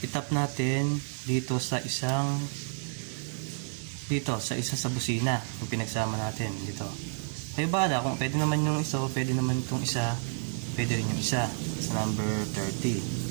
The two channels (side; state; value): left; silent; 58 dB below the other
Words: itap natin dito sa isa sa busina yung pinagsama natin dito. Kayo bala kung pwede naman yung isa, pwede naman itong isa, pwede rin yung isa sa number 30.